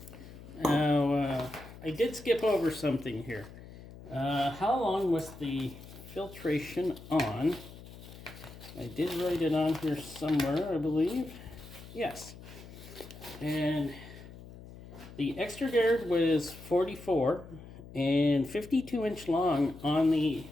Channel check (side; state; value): left; noise; hum, 16 dB below the sound